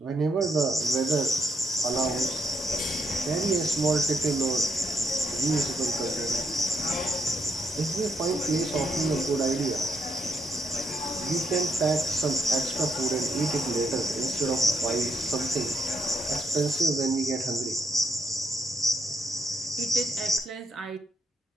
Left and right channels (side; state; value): both; normal; correlation 0.76